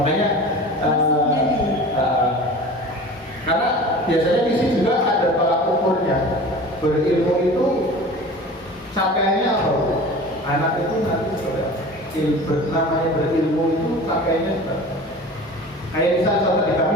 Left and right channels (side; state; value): both; normal; correlation 0.38